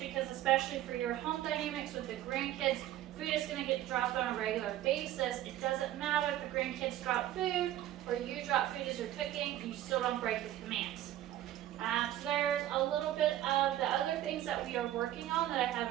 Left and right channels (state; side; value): quieter; left; 13.1 dB